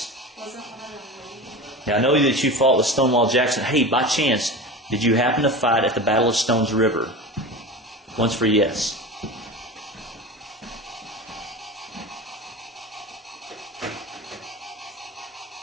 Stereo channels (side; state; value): both; normal; correlation 0.30